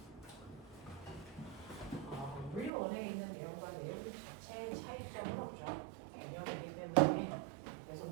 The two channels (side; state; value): left; drops out; at 2.7 s